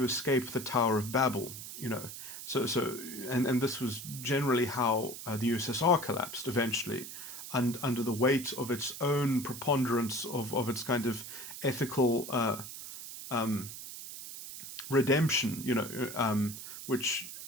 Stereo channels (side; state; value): right; noise; hiss, 10 dB below the sound